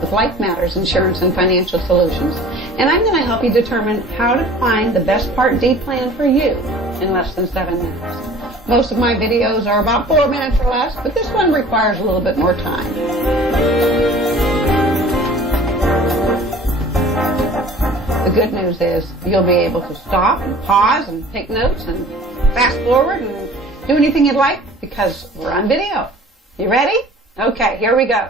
with Life Matters Insurance and Financial Solutions, and I'm going to help you determine how to find the best Part D plan for you in less than 7 minutes. Most of my videos are about 4 minutes or less, but this one requires a little bit more time. The good news is you'll be able to stop and pause and take notes and fast forward and do anything you'd like because we're on video. You ready? Okay, here we go.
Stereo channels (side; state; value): both; normal; correlation 0.46